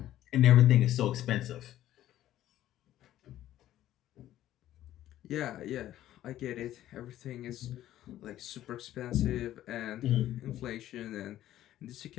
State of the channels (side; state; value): right; quieter; 13.1 dB